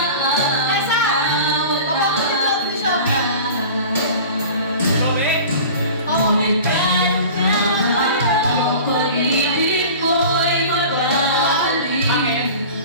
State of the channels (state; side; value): inverted; both; correlation -0.39